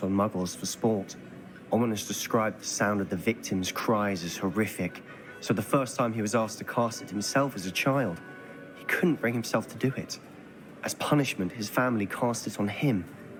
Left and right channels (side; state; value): both; identical; correlation 1.00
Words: on muggles for sport. Ominous described the sound of the victim's cries as horrific, so the first time he was asked to cast it himself as a child, he couldn't bring himself to do it. As punishment, his family cast it on him.